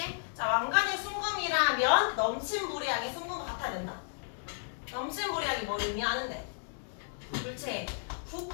자, 왕관이 순금이라면 넘친 물량이 순금과 같아야 된다. 넘친 물량이 뭘 의미하는데? 물체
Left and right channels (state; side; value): silent; right; digital silence